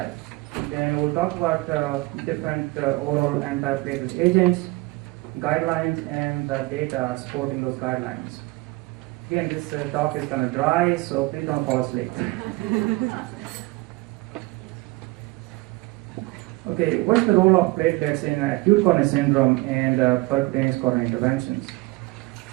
Then we'll talk about different oral antiplatelet agents, guidelines, and the data supporting those guidelines. Again, this talk is kind of dry, so please don't fall asleep. Okay, what's the role of platelets in acute coronary syndrome and percutaneous coronary interventions?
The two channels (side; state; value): left; quieter; 22.6 dB